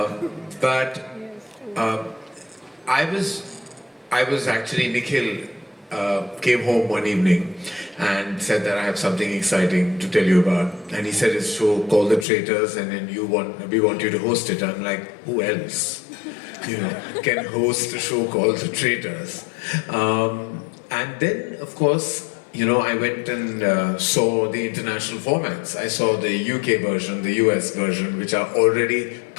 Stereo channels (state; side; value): drops out; right; at 12.2 s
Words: I was actually, Nikhil came home one evening and said that I have something exciting to tell you about. And he said, it's a show called The Traitors, and then we want you to host it. I'm like, who else can host a show called The Traitors? And then, of course, I went and saw the international formats. I saw the UK version, the US version, which are already